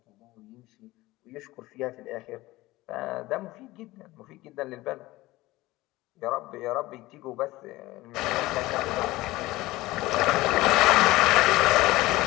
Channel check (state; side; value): quieter; right; 18.8 dB